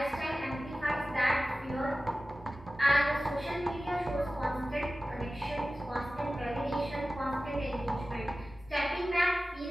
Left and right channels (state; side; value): normal; both; correlation 0.96